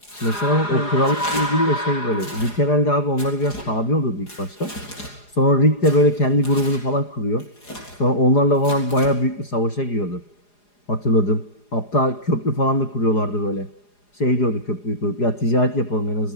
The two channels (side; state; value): right; late; 4.9 ms